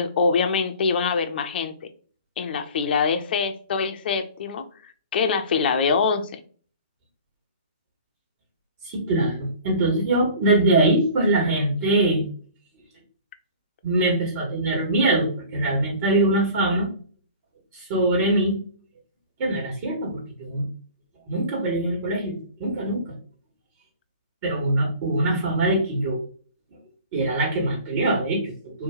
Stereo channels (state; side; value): inverted; both; correlation -0.43